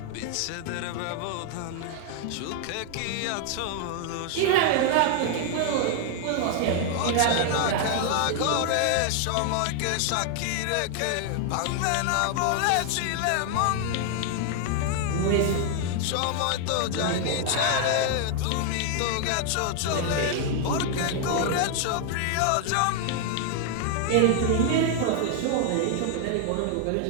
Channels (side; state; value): both; different; correlation 0.00